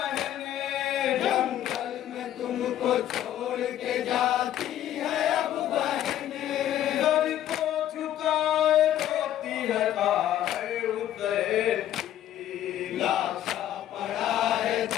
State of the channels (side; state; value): right; quieter; 11.8 dB